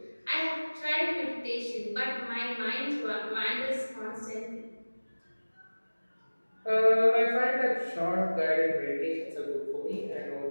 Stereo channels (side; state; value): both; inverted; correlation -1.00